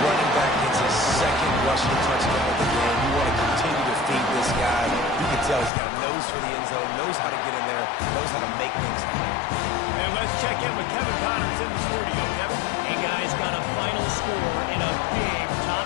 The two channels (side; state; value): right; drops out; at 5.7 s